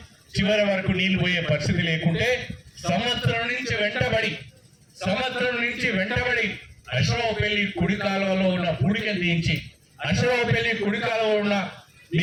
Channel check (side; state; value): both; identical; correlation 1.00